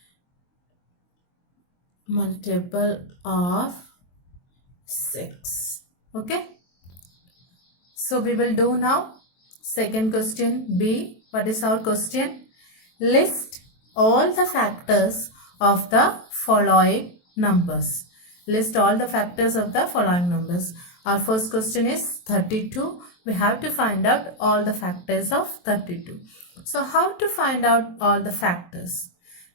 multiple of 6. Okay. So we will do now second question B. What is our question? List all the factors of the following numbers. List all the factors of the following numbers. Our first question is 32. We have to find out all the factors of 32. So how to find out all the factors?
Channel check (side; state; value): right; late; 23 ms